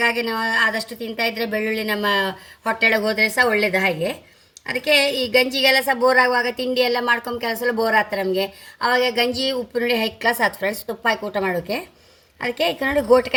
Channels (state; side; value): identical; both; correlation 1.00